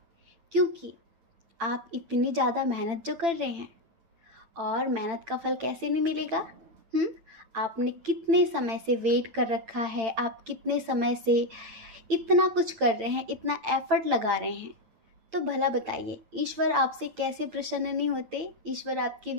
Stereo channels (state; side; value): late; left; 8.9 ms